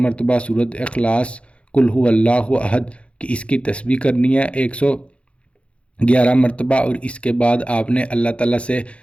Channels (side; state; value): right; late; 0.061 ms